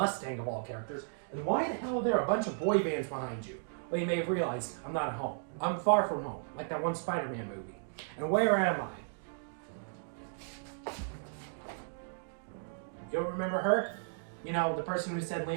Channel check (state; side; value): silent; left; digital silence